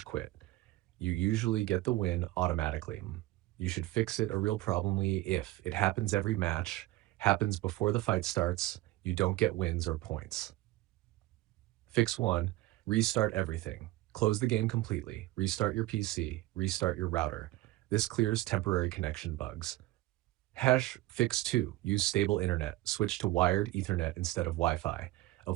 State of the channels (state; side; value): quieter; left; 17.3 dB